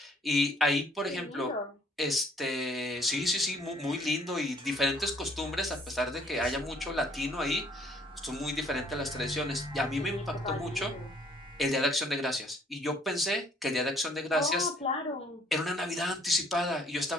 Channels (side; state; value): both; normal; correlation 0.61